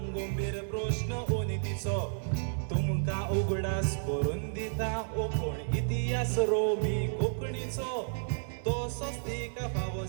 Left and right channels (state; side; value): silent; left; 57 dB below the other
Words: मेर प्रश्न उनितीचो तुमकां उगडास करून दिता कोण इतिहास रोमी कोंकणीचो तसोच तिका फावो